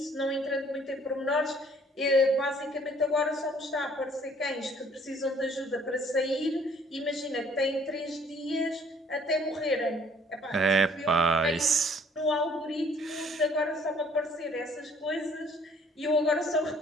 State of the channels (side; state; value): both; normal; correlation 0.59